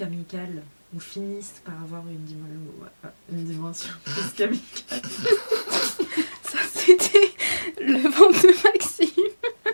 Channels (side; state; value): both; inverted; correlation -1.00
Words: ou finissent par avoir une dimension plus qu'amicale. Ça, c'était le ventre de Maxime.